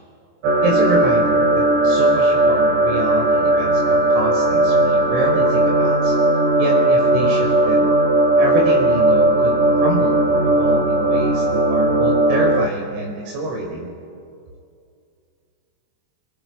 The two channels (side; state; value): left; late; 24 ms